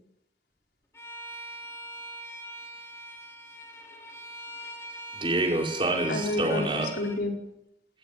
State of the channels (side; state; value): both; normal; correlation 0.30